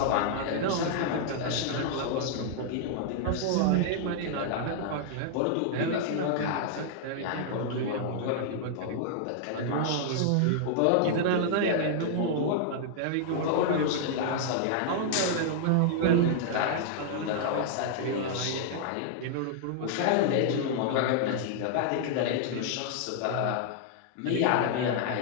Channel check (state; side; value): different; both; correlation -0.01